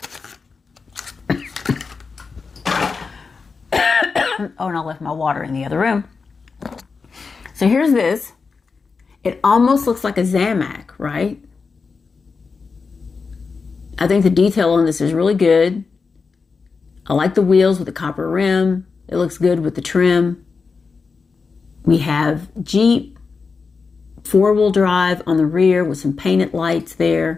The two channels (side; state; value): right; quieter; 4.8 dB